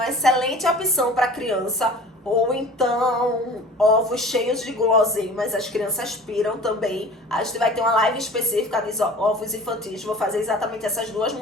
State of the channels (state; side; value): normal; both; correlation 0.43